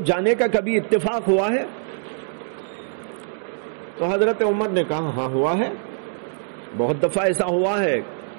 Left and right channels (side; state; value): left; silent; digital silence